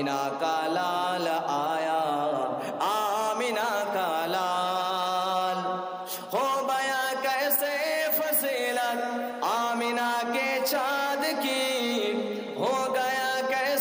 का लाल आया, आमिना का लाल। हो गया कैसे फसीलत आमिना के चाँद की, हो गया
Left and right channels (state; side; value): identical; both; correlation 1.00